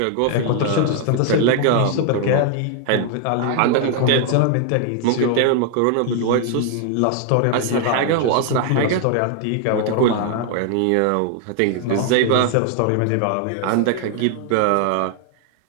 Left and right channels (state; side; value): different; both; correlation 0.00